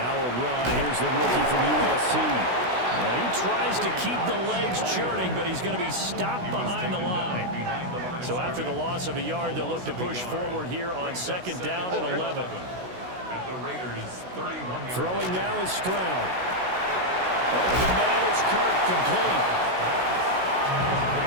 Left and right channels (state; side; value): late; left; 16 ms